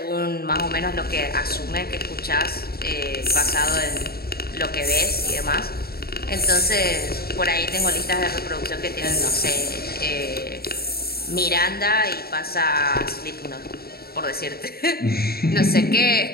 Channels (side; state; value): right; late; 0.45 ms